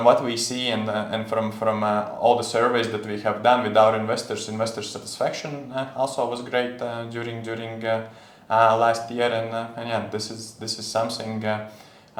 what we see and from all the surveys that we have done with our investor satisfaction also was great during last year, and yeah, this is something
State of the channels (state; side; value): identical; both; correlation 1.00